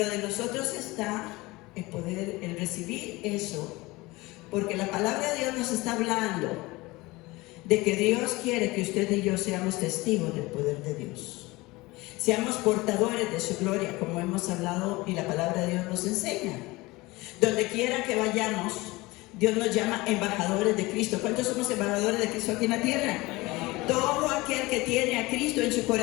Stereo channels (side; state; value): right; quieter; 21.6 dB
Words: de nosotros está el poder, el recibir eso, porque la palabra de Dios nos está hablando de que Dios quiere que usted y yo seamos testigos del poder de Dios. Seamos portadores de su gloria, como hemos hablado y la palabra de Dios nos enseña. Donde quiera que vayamos, Dios nos llama embajadores de Cristo. ¿Cuántos somos embajadores de Cristo aquí en la tierra? Todo aquel que tiene a Cristo en su